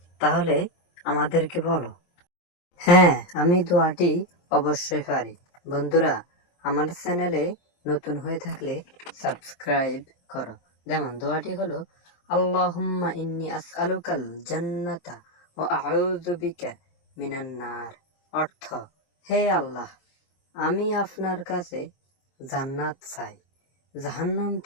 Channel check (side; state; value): right; late; 23 ms